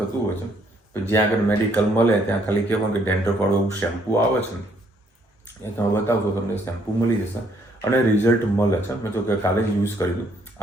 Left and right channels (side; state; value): both; normal; correlation 0.68